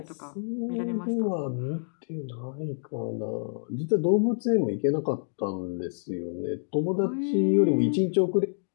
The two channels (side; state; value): right; silent; digital silence